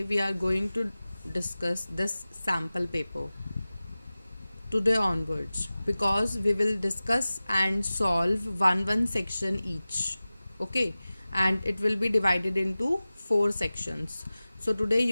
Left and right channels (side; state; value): both; inverted; correlation -0.97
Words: we are going to discuss this sample paper today onwards because we will discuss and solve one section each. Okay, and it will be divided into 4 sections. So today